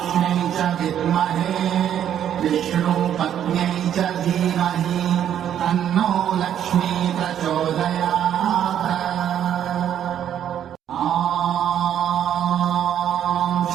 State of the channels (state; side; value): quieter; left; 10.0 dB